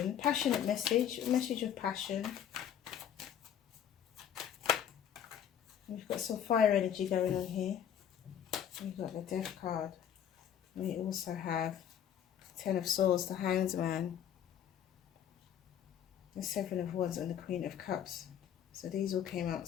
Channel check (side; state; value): right; quieter; 9.5 dB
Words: Passionate message, a message of passion. We've got some fire energy going on here. We've got the Death card. We also have Ten of Swords, the Hanged Man, the Seven of Wands, and the Queen of Cups. So these all came